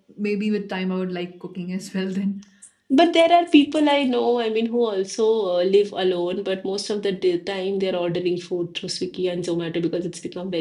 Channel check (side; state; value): both; identical; correlation 1.00